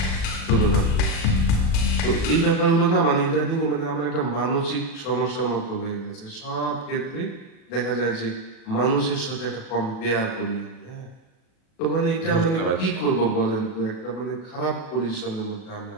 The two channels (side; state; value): right; late; 37 ms